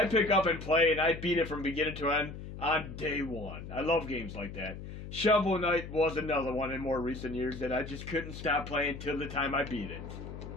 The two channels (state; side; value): noise; left; hum, 10 dB below the sound